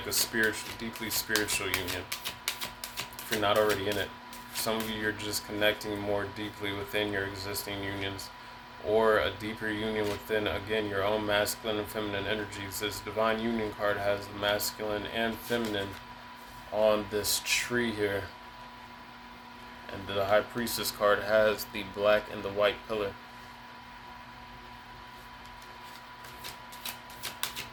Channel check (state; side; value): identical; both; correlation 1.00